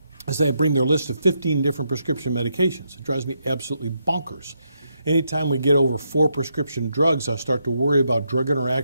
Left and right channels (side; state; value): both; inverted; correlation -0.80